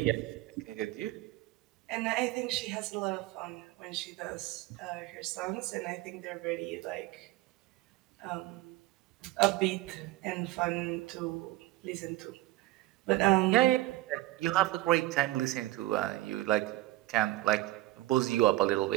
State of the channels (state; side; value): quieter; left; 17.6 dB